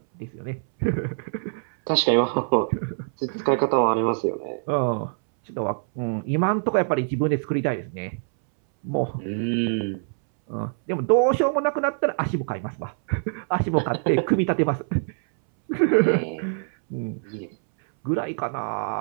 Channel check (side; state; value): left; silent; 62 dB below the other